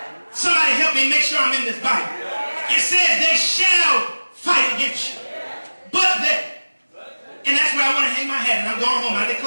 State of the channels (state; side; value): inverted; both; correlation -1.00